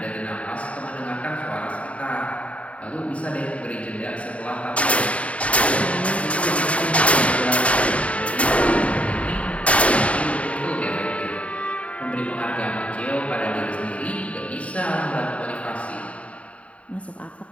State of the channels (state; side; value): late; right; 0.065 ms